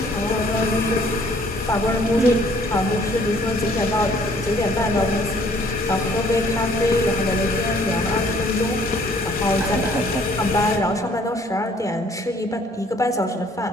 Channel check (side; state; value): both; normal; correlation 0.60